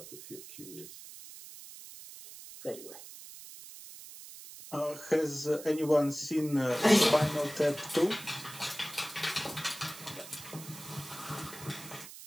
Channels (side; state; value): right; noise; hiss, 14 dB below the sound